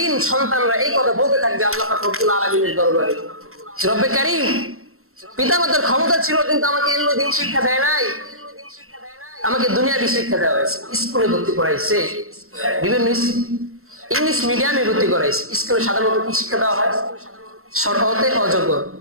সন্তানরা এই কথা বলতে থাকবে আল্লাহ পাক রব্বুল আলামিনের দরবারে, রব্বে কারীম, পিতামাতার ক্ষমতা ছিল কিন্তু আমাকে এগুলো দিন শিক্ষা দেয় নাই, আমাকে দুনিয়াবি শিক্ষা দেওয়া হয়েছে, স্কুলে ভর্তি করাইছে, বিভিন্ন ইংলিশ মিডিয়ামে ভর্তি করাইছে। স্কুলে সাধারণত কি শিক্ষা দেওয়া হয়? সরহতে অজগর,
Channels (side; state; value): left; late; 0.62 ms